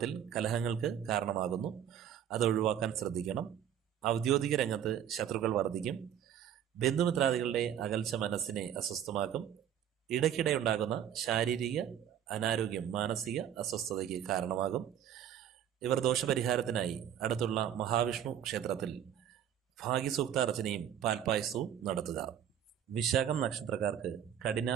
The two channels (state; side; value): quieter; left; 9.8 dB